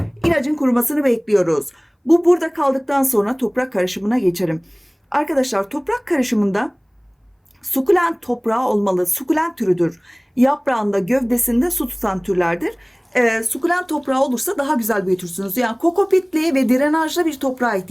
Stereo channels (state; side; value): identical; both; correlation 1.00